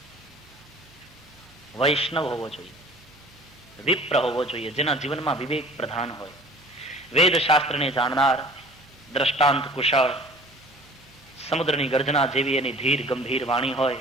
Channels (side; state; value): both; normal; correlation 0.47